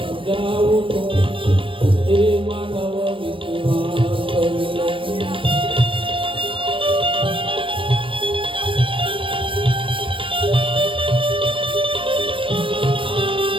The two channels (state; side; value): late; left; 0.25 ms